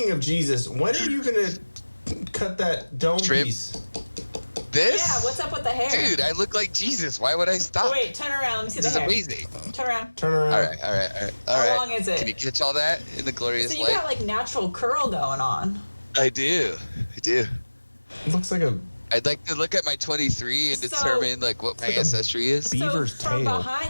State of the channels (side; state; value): both; inverted; correlation -1.00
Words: of Jesus, when are you gonna cut that dome Trim? piece? This? Yeah, what's up with the hair? Dude, I look like Jesus. Why would I stop? Oh, wait, turn around. Let me see This the is hair. amazing. Turn around. Turn around. All right. How long is it? Can you catch all that in the glorious So you light? got like natural curl going on. I do. It looks like a I'd like to look at my 23 and So- determine like what my like a ancestry is. beaver's so from tail.